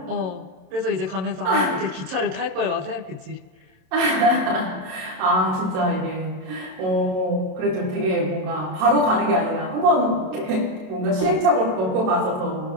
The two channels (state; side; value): late; left; 27 ms